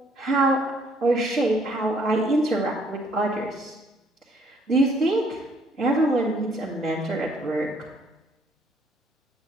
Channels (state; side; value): normal; both; correlation 0.64